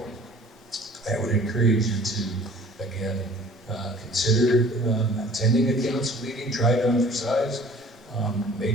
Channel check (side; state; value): both; normal; correlation 0.50